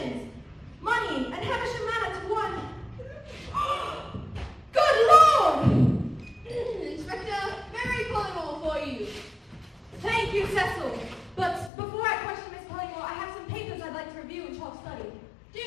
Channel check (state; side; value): drops out; right; at 11.7 s